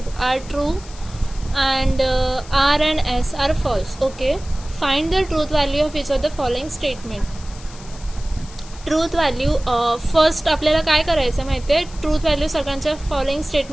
are true and R and S are false. Okay, find the truth value of each of the following statement. Truth value first आपल्याला काय करायचं माहिती आहे, truth value सगळ्यांच्या following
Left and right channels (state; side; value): noise; left; hiss, 19 dB below the sound